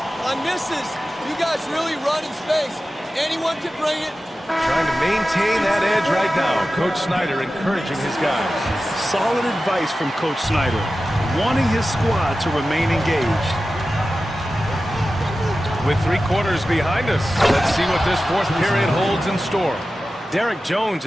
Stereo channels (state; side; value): normal; both; correlation 0.94